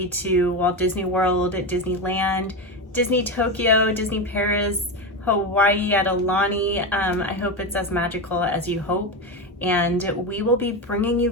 to Walt Disney World, Disneyland, Disney Tokyo, Disney Paris, Hawaii at Aulani, I hope it's as magical as you hope. And we will be bringing you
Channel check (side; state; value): both; normal; correlation 0.16